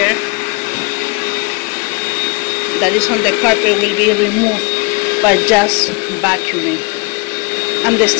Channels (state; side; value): quieter; right; 29.1 dB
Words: that is on the carpet will be removed by just vacuuming, and the